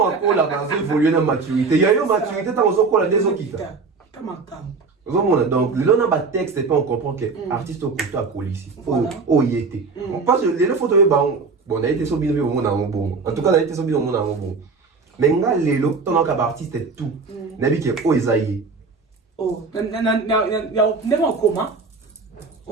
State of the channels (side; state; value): left; quieter; 4.5 dB